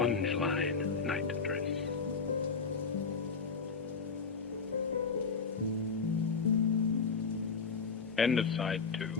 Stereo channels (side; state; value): right; quieter; 5.1 dB